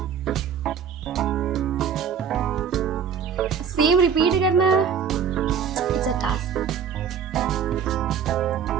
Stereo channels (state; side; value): quieter; left; 7.3 dB